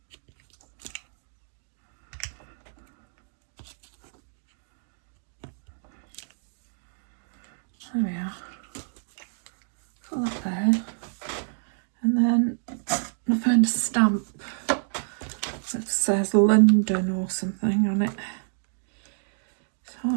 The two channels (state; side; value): silent; left; digital silence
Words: There we are. Put that there. And then I found a stamp that says London or something on it. It's